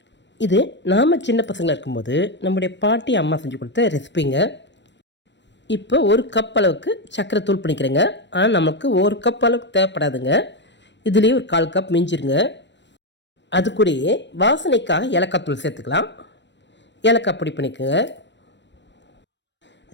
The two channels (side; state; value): right; late; 0.52 ms